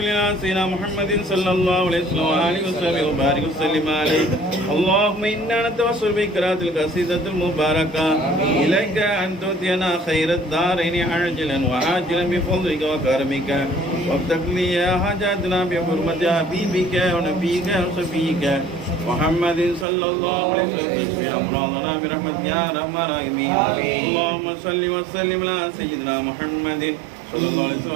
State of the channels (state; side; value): drops out; left; at 19.9 s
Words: على سيدنا محمد صلى الله عليه وسلم وآله وصحبه وبارك وسلم عليه اللهم إنا نتوسل بقراءة القصيدة المباركة إليك أن تؤتينا خير الدارين عاجلا وآجلا بفضلك وكرمك وافتح لي يا حاجاتنا بحرمة حبيبك ونبيك وصفيك محمد صلى الله عليه وسلم اشف امراضنا برحمتك يا ارحم الراحمين اللهم صل وسلم على سيدنا محمد صلى الله عليه وسلم